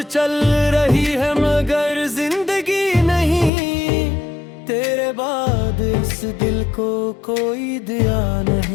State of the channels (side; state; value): right; drops out; at 3.5 s